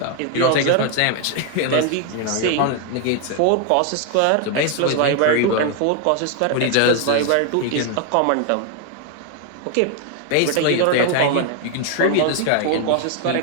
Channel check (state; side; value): different; both; correlation 0.00